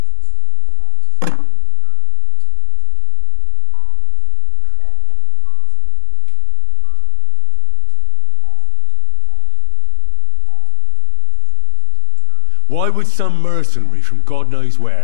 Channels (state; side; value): different; both; correlation 0.00